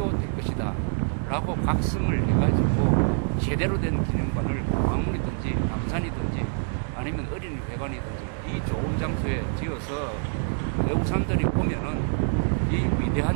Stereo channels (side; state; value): left; silent; 61 dB below the other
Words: 될 것이다. 라고 각성을 해가지고 제대로 된 기념관을 광화문이든지 남산이든지 아니면 어린이회관이든지 이 좋은 장소에 지어서 외국 사람들이 오면은 이 위대한